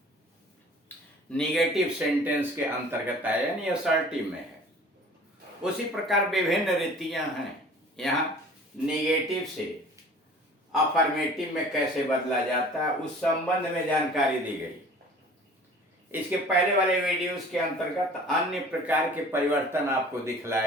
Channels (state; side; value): normal; both; correlation 0.47